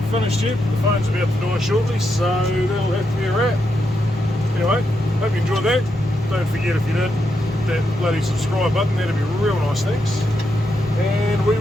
finished yet, but the phone's about to die shortly, so that'll have to be a wrap. Anyway, hope you enjoyed that. Don't forget, if you did, that bloody subscribe button, that'd be real nice, thanks. And we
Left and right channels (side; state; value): both; normal; correlation 0.83